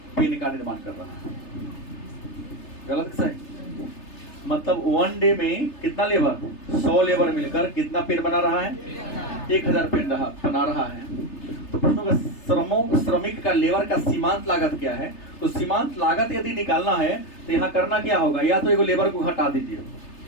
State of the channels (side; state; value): right; late; 3.3 ms